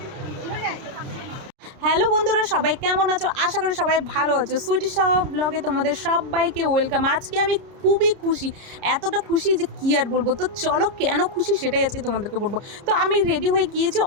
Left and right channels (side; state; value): left; late; 30 ms